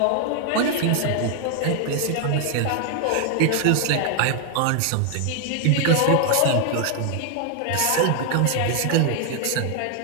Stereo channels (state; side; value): different; both; correlation 0.00